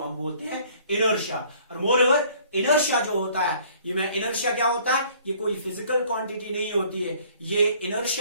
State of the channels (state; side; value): inverted; both; correlation -0.57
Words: हम बोलते हैं इनर्शिया। और मोरओवर इनर्शिया जो होता है, ये में इनर्शिया क्या होता है? ये कोई फिजिकल क्वांटिटी नहीं होती है, ये